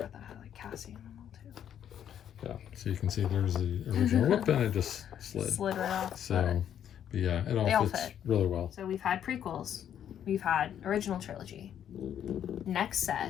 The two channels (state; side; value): quieter; right; 9.7 dB